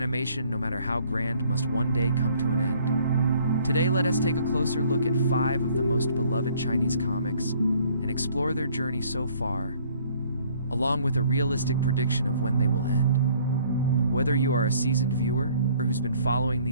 no matter how grand, must one day come to an end. Today, let us take a closer look at 5 of the most beloved Chinese comics and explore their journey so far, along with a realistic prediction of when they will end. Whether you are a seasoned viewer who's been following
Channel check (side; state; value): both; inverted; correlation -0.59